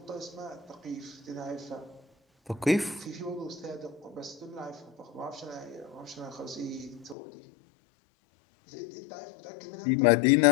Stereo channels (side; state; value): right; drops out; at 7.2 s